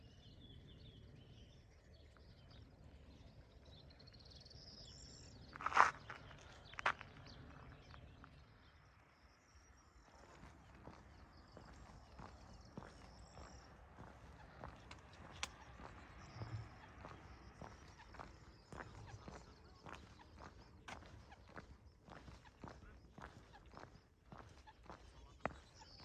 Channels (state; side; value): identical; both; correlation 1.00